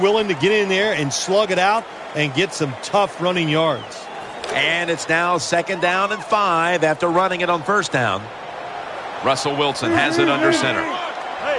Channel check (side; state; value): both; identical; correlation 1.00